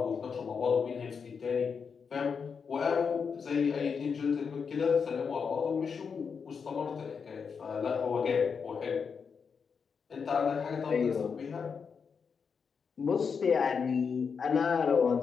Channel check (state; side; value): quieter; right; 6.0 dB